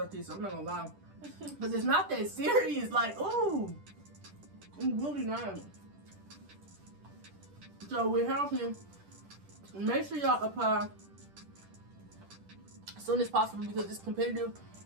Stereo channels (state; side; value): late; left; 10 ms